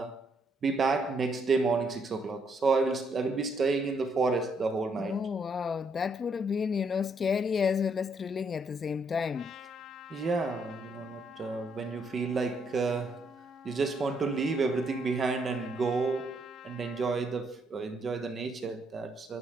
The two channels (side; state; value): both; normal; correlation 0.72